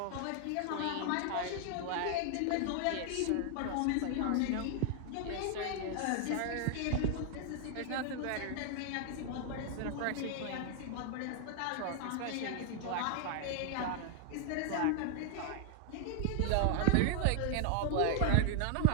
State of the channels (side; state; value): both; different; correlation 0.00